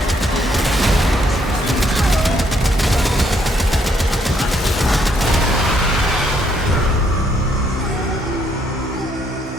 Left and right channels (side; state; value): both; normal; correlation 0.70